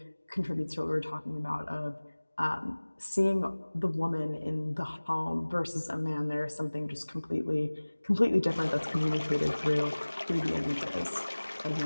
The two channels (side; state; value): both; inverted; correlation -1.00